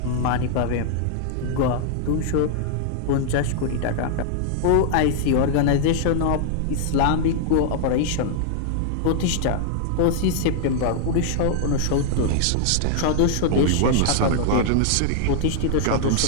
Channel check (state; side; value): different; both; correlation -0.01